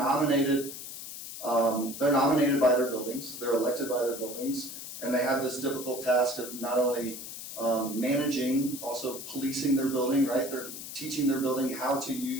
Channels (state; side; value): noise; left; hiss, 10 dB below the sound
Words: by their buildings, they're elected by their buildings, and they have this difficult task of not only managing, also policing their building, right? They're teaching their building how to